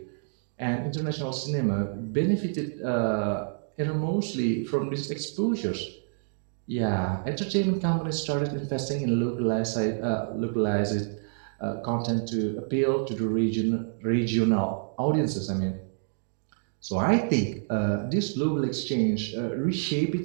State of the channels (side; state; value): left; silent; digital silence